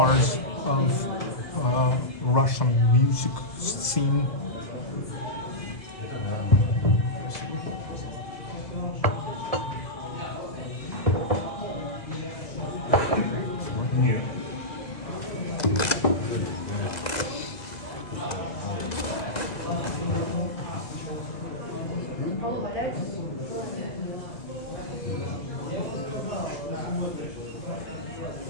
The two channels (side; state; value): right; late; 2.0 ms